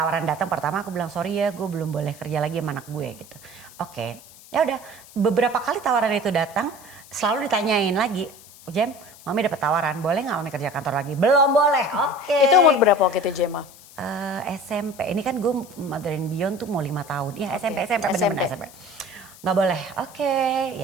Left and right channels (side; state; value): left; noise; hiss, 21 dB below the sound